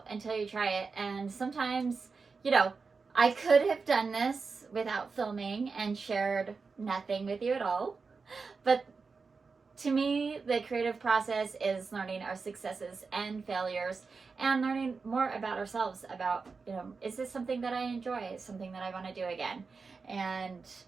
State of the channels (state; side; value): quieter; left; 4.7 dB